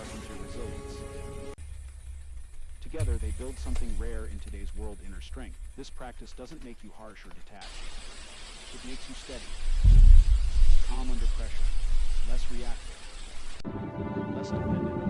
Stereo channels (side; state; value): both; identical; correlation 1.00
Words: your resilience. Together, they build something rare in today's world: inner strength. This practice doesn't make you harsh or detached. It makes you steady, calm under pressure, less reactive, less dependent